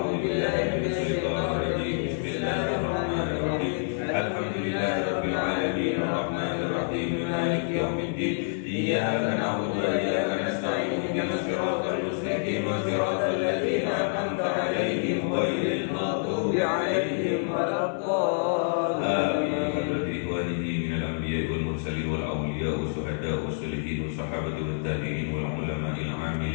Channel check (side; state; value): right; silent; 60 dB below the other